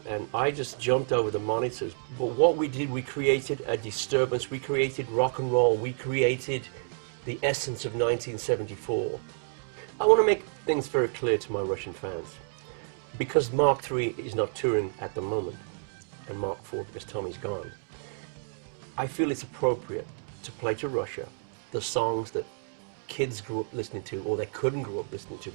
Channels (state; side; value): silent; left; digital silence